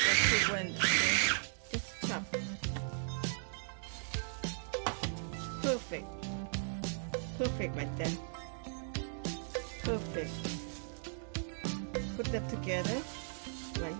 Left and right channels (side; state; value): left; silent; digital silence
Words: too blend, okay? Just chop. Perfect. Perfect right there. Perfect. Put them together right